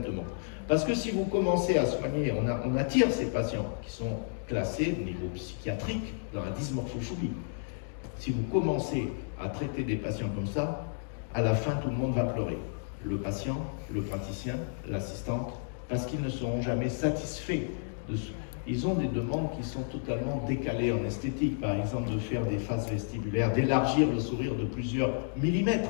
Parce que si vous commencez à soigner, on attire ces patients qui sont classés au niveau psychiatrique dans la dysmorphophobie. Si vous commencez à traiter des patients comme ça, à la fin tout le monde va pleurer. Le patient, le praticien, l'assistante, parce qu'ils ne seront jamais satisfaits. Ils ont des demandes qui sont totalement décalées en esthétique, par exemple de faire des faces vestibulaires, d'élargir le sourire de plusieurs millimètres.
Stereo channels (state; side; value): silent; right; digital silence